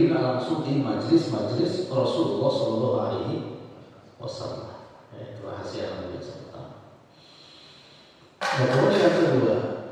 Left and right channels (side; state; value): both; identical; correlation 1.00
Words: langsung di majelis-majelis Rasulullah Shallallahu Alaihi Wasallam. Itu rahasia yang biasa pertama. Nah, kemudian yang kedua,